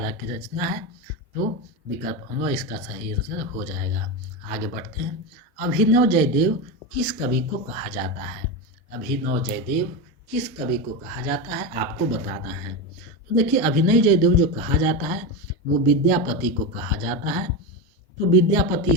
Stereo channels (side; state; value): both; normal; correlation 0.15